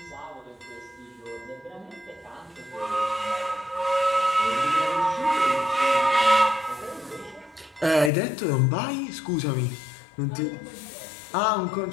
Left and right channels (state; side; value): drops out; right; at 8.1 s